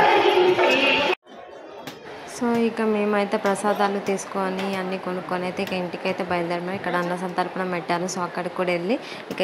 సో ఇక మేమైతే ప్రసాదాలు తీసుకొని అన్నీ కొనుక్కొని అయితే ఇక ఇంటికైతే బయలుదేరాము. ఇక్కడ అన్న సంతర్పణ పెట్టారు. సో అక్కడికి కూడా వెళ్ళి ఇక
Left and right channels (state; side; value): identical; both; correlation 1.00